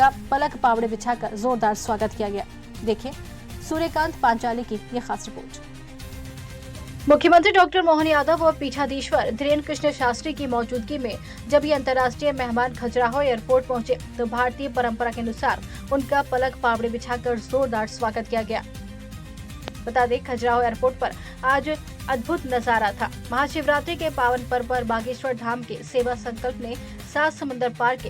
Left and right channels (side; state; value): both; identical; correlation 1.00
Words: पलक पावड़े बिछाकर जोरदार स्वागत किया गया। देखिए सूर्यकांत पांचाली की ये खास रिपोर्ट। मुख्यमंत्री डॉक्टर मोहन यादव और पीठाधीश्वर धीरेन्द्र कृष्ण शास्त्री की मौजूदगी में जब ये अंतर्राष्ट्रीय मेहमान खजुराहो एयरपोर्ट पहुंचे तो भारतीय परंपरा के अनुसार उनका पलक पावड़े बिछाकर जोरदार स्वागत किया गया। बता दें, खजुराहो एयरपोर्ट पर आज अद्भुत नजारा था। महाशिवरात्रि के पावन पर्व पर बागेश्वर धाम के सेवा संकल्प ने 7 समंदर पार